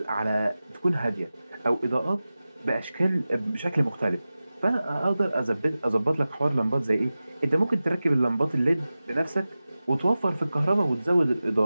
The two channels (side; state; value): both; inverted; correlation -0.96